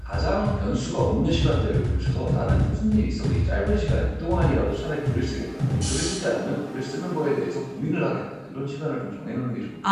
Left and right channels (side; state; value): both; identical; correlation 1.00